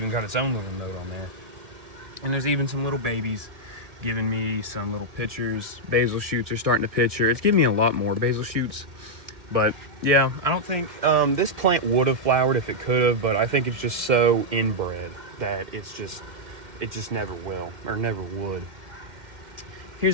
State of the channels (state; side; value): late; left; 1.7 ms